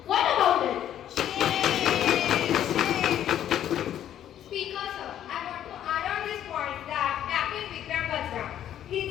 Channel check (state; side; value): quieter; right; 10.9 dB